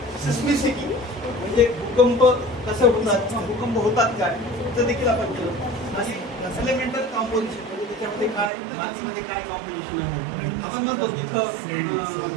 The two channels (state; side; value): drops out; left; at 8.5 s